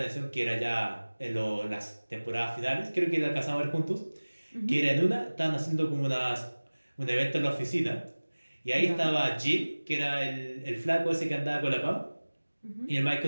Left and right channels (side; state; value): both; inverted; correlation -1.00